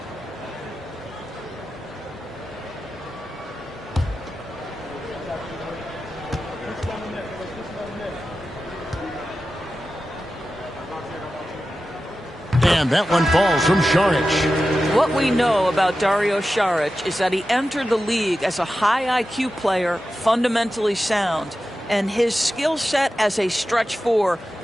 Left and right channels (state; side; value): normal; both; correlation 0.93